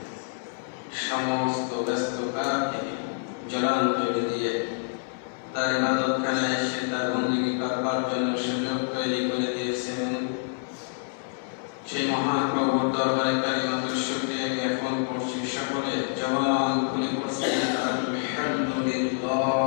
সমস্ত ব্যস্ততাকে জলাঞ্জলি দিয়ে তার ইবাদতখানায় এসে তার বন্দেগী করবার জন্য সুযোগ তৈরি করে দিয়েছেন। সেই মহান প্রভুর দরবারে কালিমাতুল শুকরিয়া জ্ঞাপন করছি। সকলে জবান খুলে পড়ছি আলহামদুলিল্লাহ।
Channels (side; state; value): right; silent; 60 dB below the other